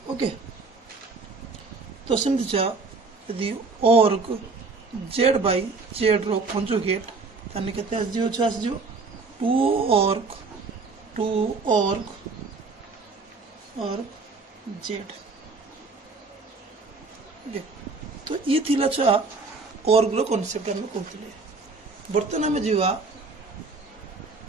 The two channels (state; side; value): quieter; left; 4.1 dB